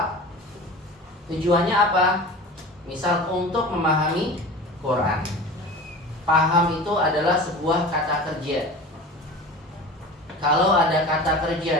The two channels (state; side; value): normal; both; correlation 0.35